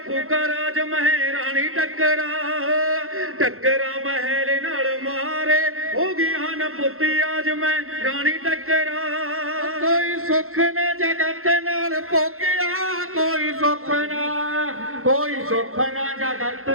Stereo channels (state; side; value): late; left; 0.62 ms